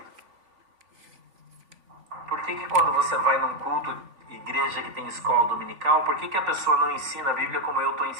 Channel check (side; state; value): left; late; 3.5 ms